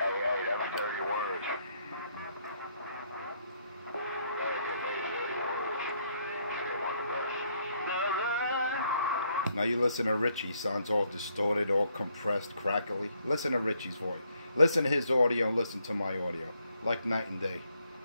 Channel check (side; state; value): both; inverted; correlation -0.72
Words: that was 30 words. Now you listen to Richie. Sounds all distorted, all compressed, crackly. Listen to Richie's voice. Listen to his audio, listen to my audio. Like night and day.